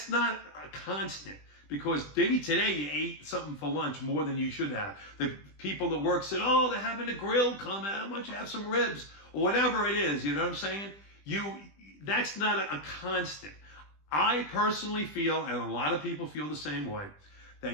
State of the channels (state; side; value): late; right; 20 ms